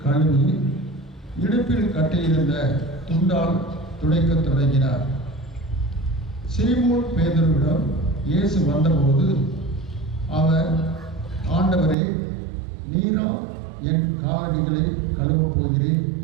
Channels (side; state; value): left; drops out; at 12.0 s